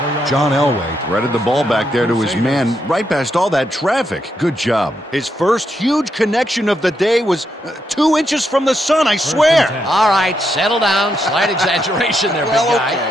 John Elway threaded the ball back there to his man right past all that traffic. Good job. His first huge connection of the day was 2 inches from the sun, I swear. All right, settle down. Slight exaggeration there, big guy.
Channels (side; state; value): both; normal; correlation 0.80